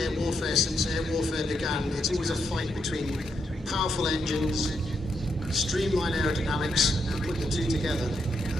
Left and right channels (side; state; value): both; normal; correlation 0.79